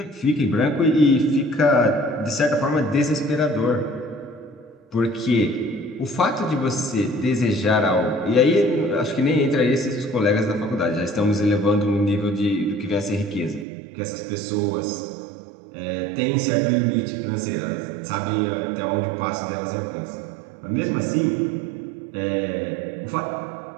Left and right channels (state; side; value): drops out; left; at 13.7 s